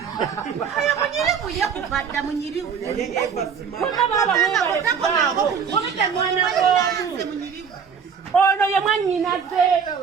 Ayo munyirivu yakubadda munyirivu. Ono ye mwannyinaze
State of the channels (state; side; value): quieter; left; 6.7 dB